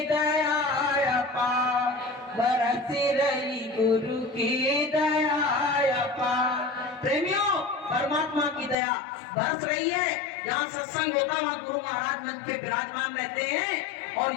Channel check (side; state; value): right; drops out; at 8.8 s